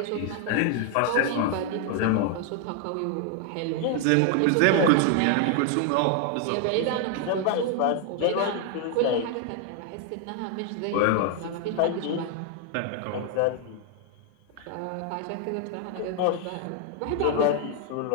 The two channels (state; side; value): different; both; correlation 0.00